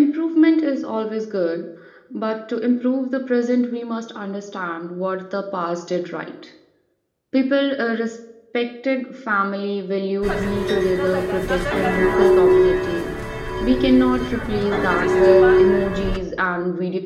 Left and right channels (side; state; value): both; identical; correlation 1.00